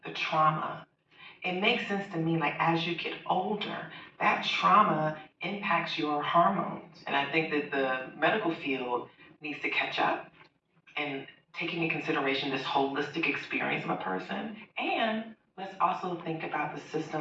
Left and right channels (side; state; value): both; identical; correlation 1.00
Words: the trauma, it makes sense to me, like as you get older, that trauma impacts your hormones. And I think that the medical field needs to catch up and taking into consideration this holistic experience of a person. And let's also think about the